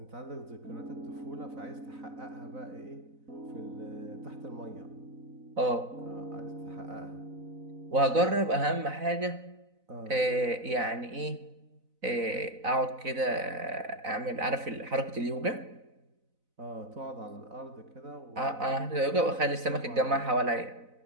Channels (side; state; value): left; late; 4.0 ms